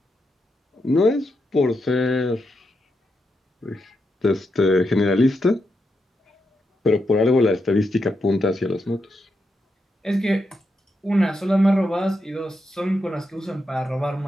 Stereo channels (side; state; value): both; normal; correlation 0.84